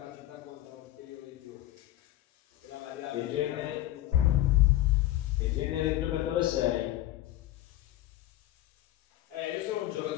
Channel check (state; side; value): quieter; right; 14.7 dB